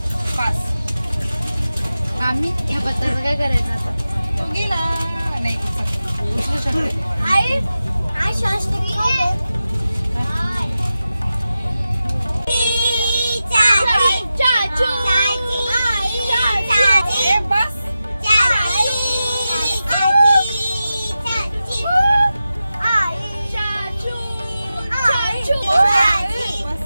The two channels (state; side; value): inverted; both; correlation -0.93